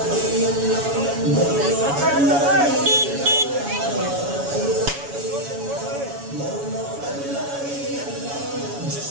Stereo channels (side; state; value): left; late; 7.1 ms